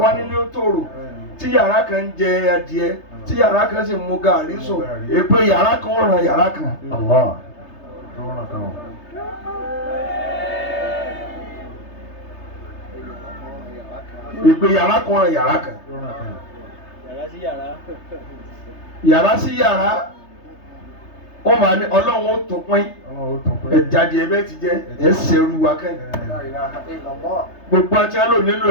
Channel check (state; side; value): late; right; 3.3 ms